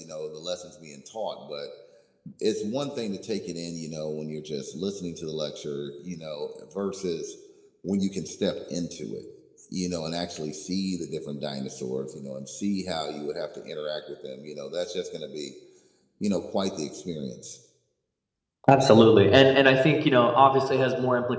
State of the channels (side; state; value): both; identical; correlation 1.00